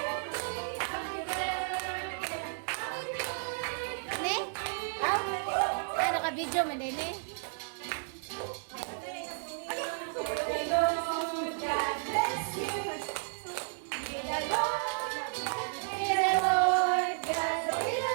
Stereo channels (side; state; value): left; silent; digital silence